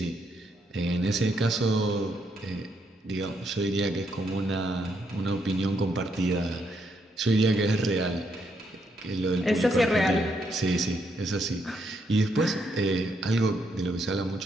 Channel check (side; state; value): both; normal; correlation 0.76